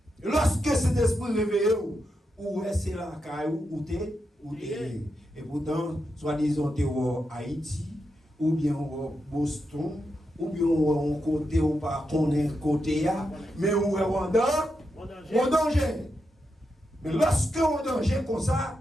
Lorsque cet esprit réveillé, ou c'est la caillou, ou t'es. Et pourtant, soi-disant, t'es au Haïti, ou bien au Boston, ou bien on côté ou pas qu'on est côté mais on est en danger. Mais lorsque on est en danger comme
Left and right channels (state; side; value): normal; both; correlation 0.85